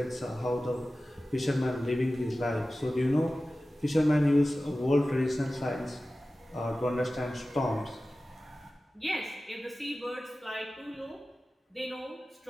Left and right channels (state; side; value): normal; both; correlation 0.96